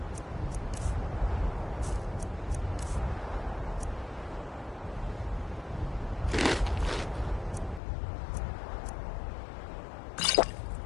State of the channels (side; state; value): right; drops out; at 7.8 s